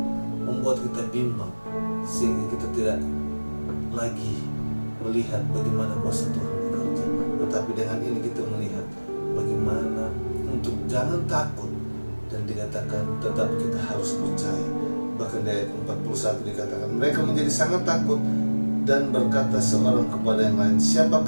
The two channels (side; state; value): both; inverted; correlation -1.00